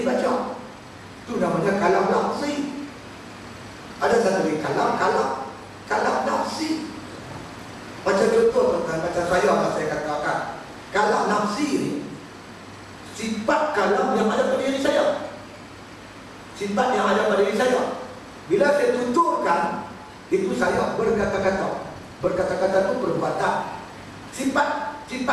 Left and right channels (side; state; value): both; identical; correlation 1.00